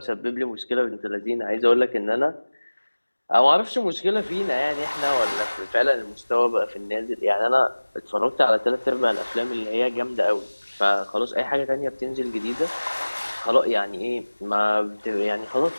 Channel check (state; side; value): inverted; both; correlation -1.00